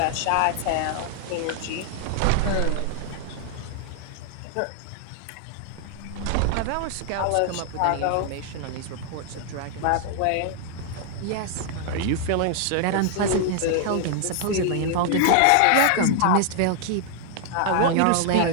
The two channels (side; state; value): both; different; correlation 0.00